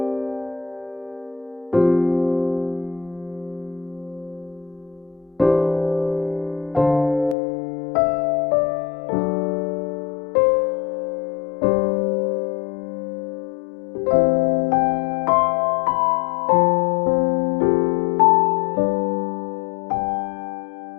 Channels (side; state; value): right; drops out; at 7.4 s